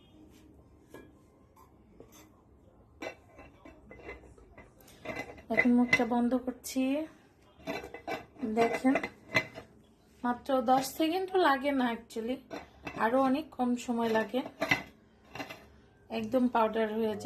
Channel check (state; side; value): identical; both; correlation 1.00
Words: এখন মুখটা বন্ধ করছি। দেখেন, মাত্র 10 সেকেন্ডও লাগে না, অ্যাকচুয়ালি আরো অনেক কম সময় লাগে, একদম পাউডার হয়ে